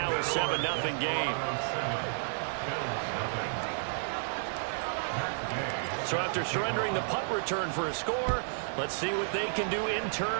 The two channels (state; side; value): silent; left; 57 dB below the other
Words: a 7-0 game. So after surrendering the punt return for a score, let's see what they can do in